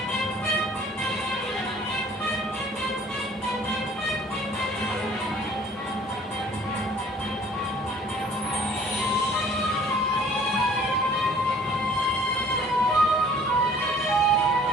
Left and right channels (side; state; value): both; normal; correlation 0.54